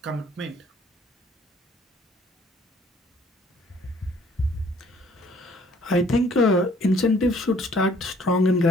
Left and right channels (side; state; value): both; normal; correlation 0.59